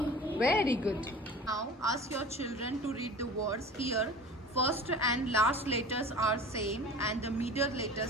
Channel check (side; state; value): both; normal; correlation 0.39